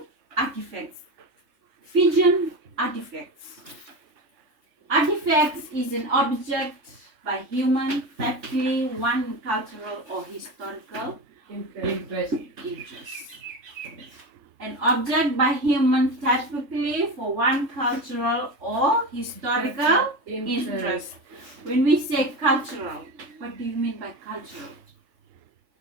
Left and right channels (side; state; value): left; late; 3.6 ms